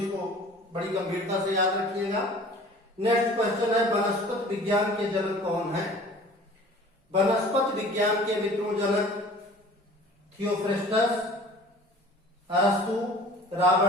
बड़ी गंभीरता से याद रखिएगा। नेक्स्ट क्वेश्चन है, वनस्पति विज्ञान के जनक कौन है। वनस्पति विज्ञान के मित्रों जनक थियोफ्रेस्टस, अरस्तु,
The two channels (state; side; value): normal; both; correlation 0.46